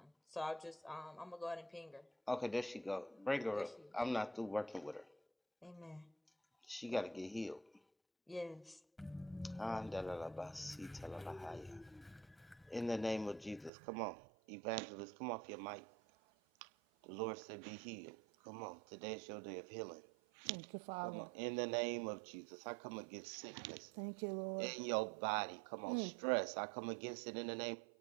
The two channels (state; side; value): drops out; left; at 13.7 s